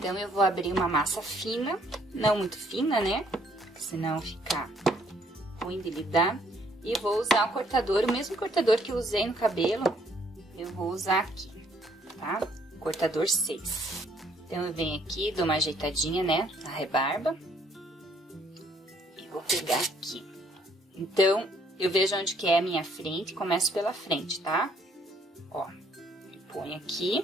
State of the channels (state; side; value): normal; both; correlation 0.65